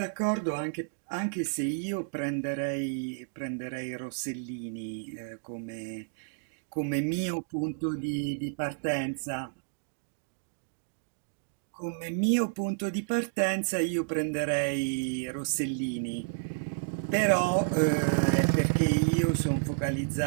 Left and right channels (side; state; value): left; silent; digital silence